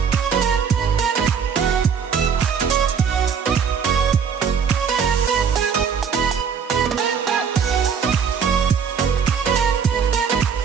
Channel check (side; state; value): left; quieter; 6.8 dB